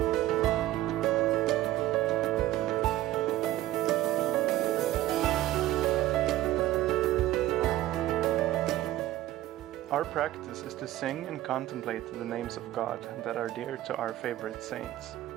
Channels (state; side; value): quieter; left; 15.0 dB